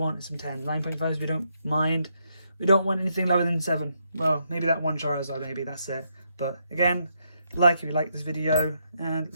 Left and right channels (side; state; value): both; inverted; correlation -0.78